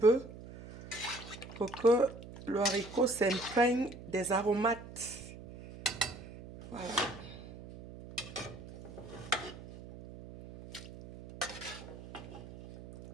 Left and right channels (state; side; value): noise; right; hum, 14 dB below the sound